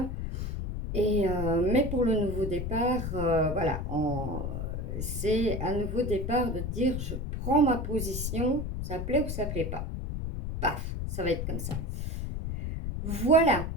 Et, mais pour le nouveau départ, voilà, c'est un nouveau départ de dire je prends ma position, ça plaît ou ça plaît pas. Paf, ça va être comme ça. Voilà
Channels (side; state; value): left; noise; rumble, 3 dB below the sound